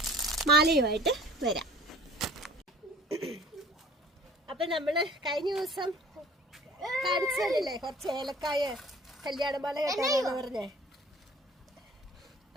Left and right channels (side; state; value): both; normal; correlation 0.49